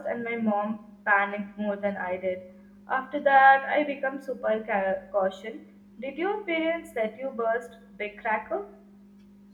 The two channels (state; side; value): identical; both; correlation 1.00